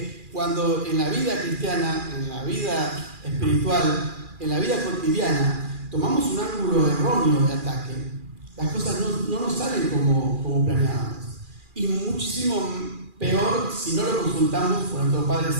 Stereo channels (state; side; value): late; left; 2.4 ms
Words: cuando en la vida cristiana, en la vida espiritual, en la vida cotidiana, tomamos un ángulo erróneo de ataque, las cosas no nos salen como planeábamos. Y muchísimo peor si no lo consultamos con nuestro Padre